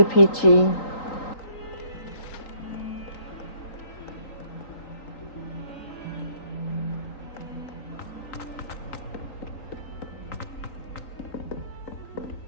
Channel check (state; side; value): late; right; 3.9 ms